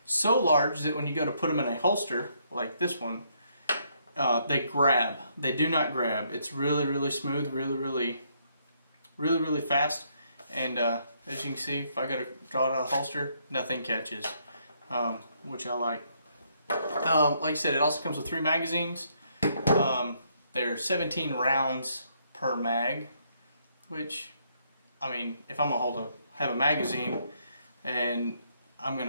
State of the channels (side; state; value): both; inverted; correlation -0.72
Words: so large that when you go to put them in a holster like this one, they grab. They do not grab. It's really smooth, really fast, and as you can see, if I go to draw it out of the holster, nothing catches, which I like. Like I said, it also comes with 3 magazines. They're 17 rounds per mag, which, I mean, if I'm gonna have a magazine and I'm